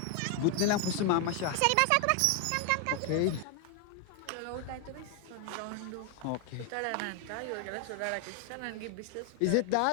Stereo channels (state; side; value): different; both; correlation 0.01